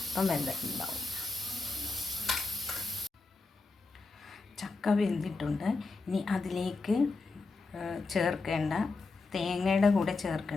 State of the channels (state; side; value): quieter; right; 3.8 dB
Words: അപ്പം വെന്തിട്ടുണ്ടാവും. ചക്ക വെന്തിട്ടുണ്ട്. ഇനി അതിലേക്ക് ചേർക്കേണ്ട, തേങ്ങയുടെ കൂടെ